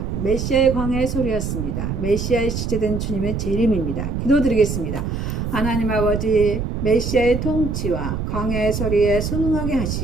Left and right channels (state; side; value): noise; right; rumble, 3 dB below the sound